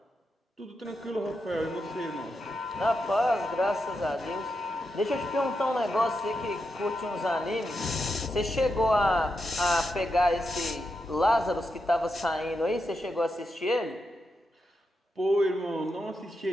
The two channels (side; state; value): both; normal; correlation 0.86